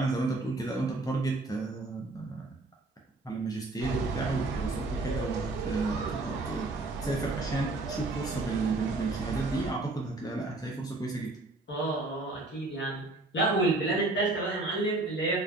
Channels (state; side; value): quieter; left; 3.0 dB